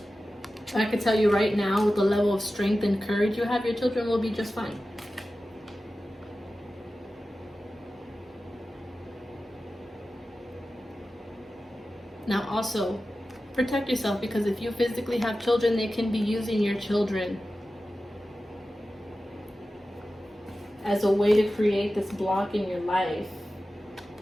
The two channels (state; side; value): normal; both; correlation 0.94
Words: I can tell you right now, with the level of strength and courage you have, your children will be just fine. Now also, protect yourself, because if you physically have children, they can be using your children as a way to create this block in your life,